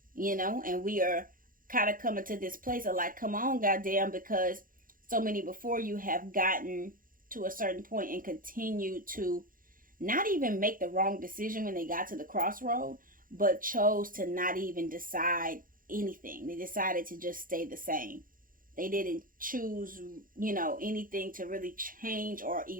And we are kind of coming to this place of like, come on, goddamn, because so many before you have gotten to a certain point and continue to not even make the wrong decision when they got to the crossroad, but chose to not even decide anything. They decided to just stay the same. They didn't choose, anything to really change or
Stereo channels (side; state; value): left; late; 0.40 ms